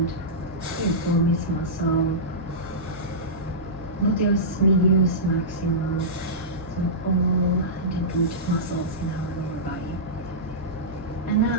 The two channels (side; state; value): both; normal; correlation -0.16